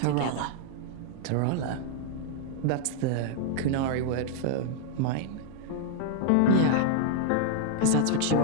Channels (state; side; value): different; both; correlation 0.00